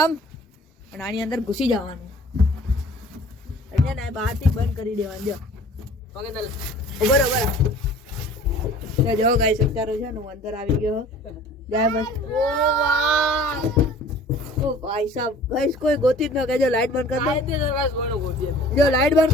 અને આની અંદર ઘૂસી જવાનું. એટલે ને બહારથી બંધ કરી દેવાનું. જો બરોબર. જો ગાઈસ અત્યારે છે ને હું અંદર આવી ગયો. જાય બસ. ઓ ભાઈ સાહેબ ગાઈસ કોઈ ગોતી જ ન કે. જો લાઈટ બંધ કરી દો. જો લાઈટ બંધ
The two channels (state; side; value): normal; both; correlation 0.48